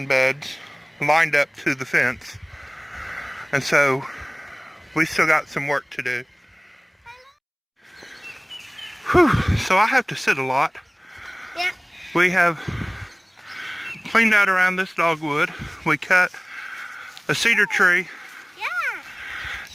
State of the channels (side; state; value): both; identical; correlation 1.00